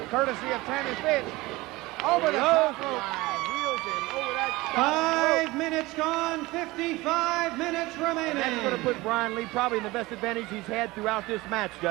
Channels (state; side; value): quieter; left; 20.8 dB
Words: courtesy of Tammy Fytch. Over the top rope. Wheels him over that 5 minutes gone, 55 minutes remaining. And that's going to put Brian Lee probably in the best advantage he's had throughout this match,